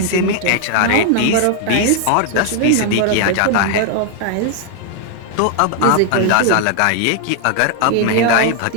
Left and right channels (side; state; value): both; different; correlation 0.00